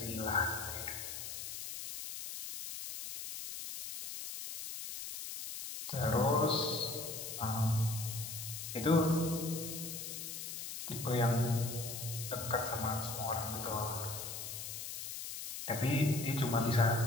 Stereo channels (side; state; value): left; noise; hiss, 7 dB below the sound